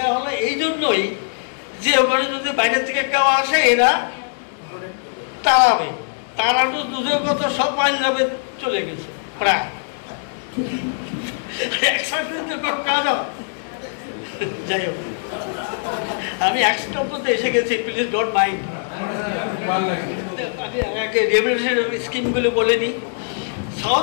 হলো এই জন্যই যে ওখানে যদি বাইরে থেকে কেউ আসে এরা তাড়াবে। তাড়ানো দুধের কথা সব পাঞ্জাবে চলে গেছে প্রায়। যাই হোক, আমি একশোতে এসে গেছি, প্লিজ ডোন্ট মাইন্ড। আমি রেভলিউশন স্কিমগুলো বলে নিই।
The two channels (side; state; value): right; silent; 65 dB below the other